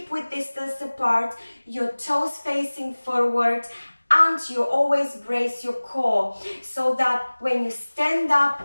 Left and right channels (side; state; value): both; inverted; correlation -1.00